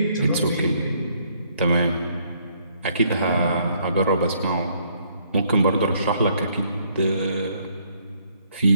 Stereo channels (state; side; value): inverted; both; correlation -0.67